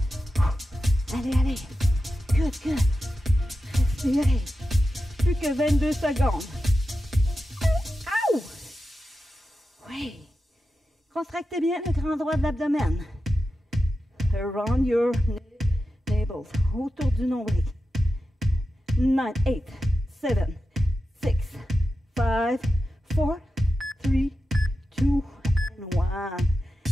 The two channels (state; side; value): normal; both; correlation 0.91